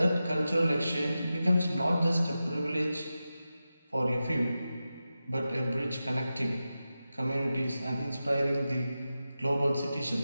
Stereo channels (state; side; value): inverted; both; correlation -0.93